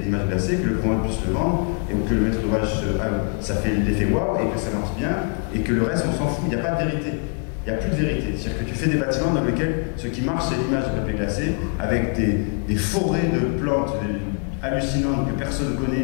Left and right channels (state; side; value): quieter; right; 39.3 dB